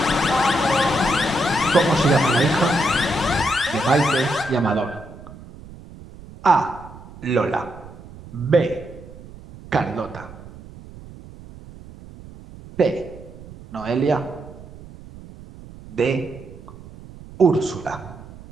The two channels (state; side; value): noise; right; rumble, 18 dB below the sound